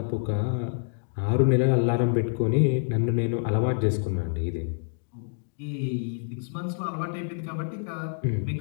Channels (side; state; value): right; silent; digital silence